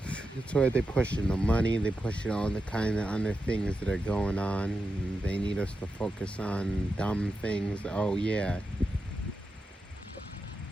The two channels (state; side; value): normal; both; correlation 0.89